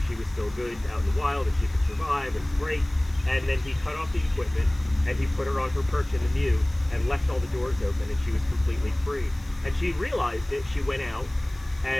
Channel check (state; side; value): noise; left; hiss, 25 dB below the sound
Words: she was still good out in the wild and she could survive, and great. And then he cut off the equipment and he put her on her perch in the mew and left all the doors open, and she was completely free. And she realized it. She went out,